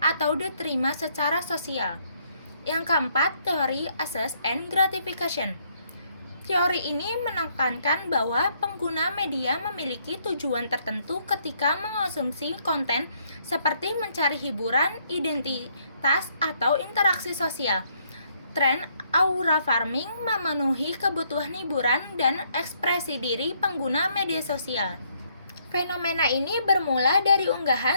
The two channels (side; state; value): both; inverted; correlation -0.70